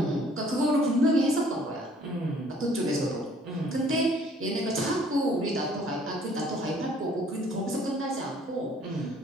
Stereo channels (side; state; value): both; normal; correlation 0.58